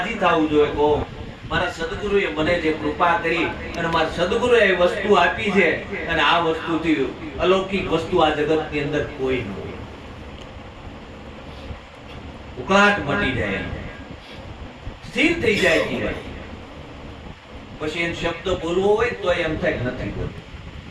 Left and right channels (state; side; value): identical; both; correlation 1.00